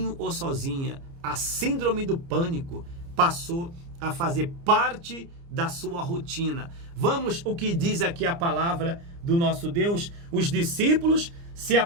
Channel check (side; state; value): left; late; 29 ms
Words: ou sozinha. A síndrome do pânico passou a fazer parte da sua rotina. Vamos o que diz aqui a palavra do nosso Deus. Os discípulos se